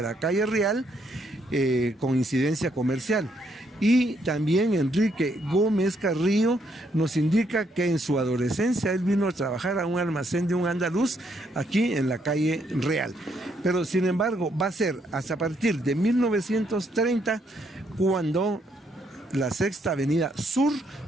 calle Real con incidencia comercial. Y también Enrique Gómez Carrillo nos indica que en su adolescencia él vino a trabajar a un almacén de un andaluz aquí en la calle Real. Pero sin embargo va a ser hasta a partir de 1930 cuando la Sexta Avenida Sur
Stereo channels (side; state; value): both; normal; correlation 0.73